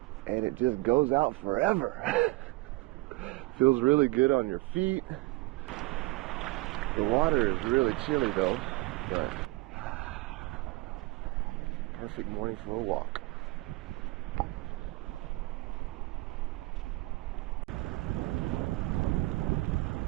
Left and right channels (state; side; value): quieter; left; 21.9 dB